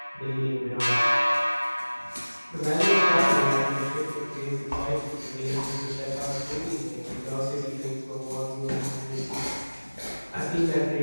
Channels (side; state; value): both; inverted; correlation -1.00